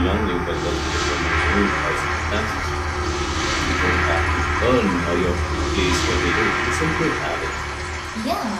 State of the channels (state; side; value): identical; both; correlation 1.00